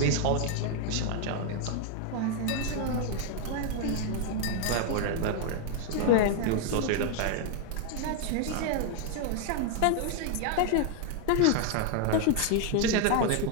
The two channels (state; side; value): different; both; correlation 0.00